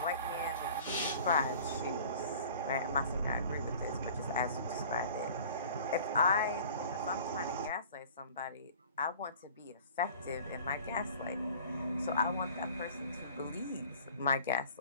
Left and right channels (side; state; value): both; inverted; correlation -0.46